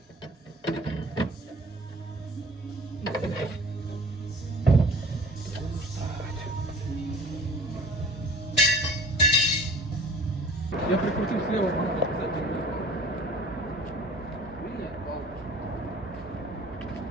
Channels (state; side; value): normal; both; correlation 0.45